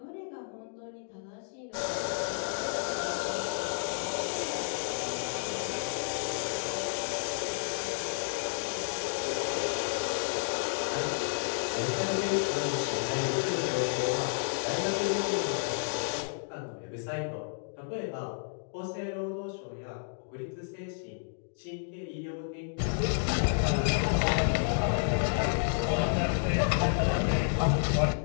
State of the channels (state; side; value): silent; right; digital silence